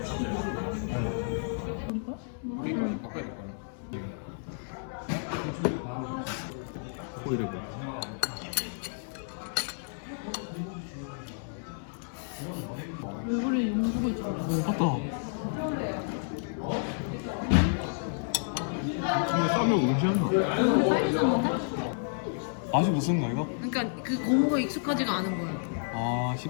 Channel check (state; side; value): silent; right; digital silence